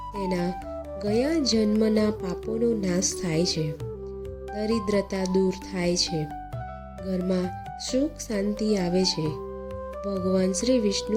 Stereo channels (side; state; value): both; identical; correlation 1.00